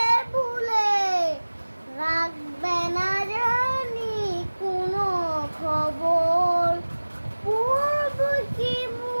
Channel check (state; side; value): inverted; both; correlation -1.00